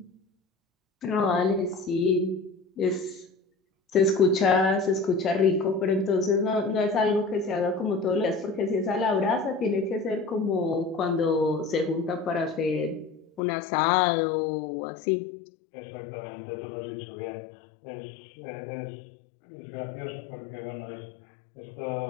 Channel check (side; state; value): right; drops out; at 13.4 s